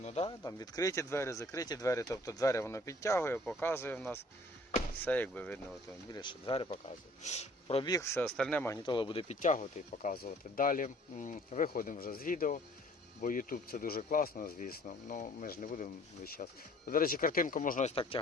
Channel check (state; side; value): normal; both; correlation 0.54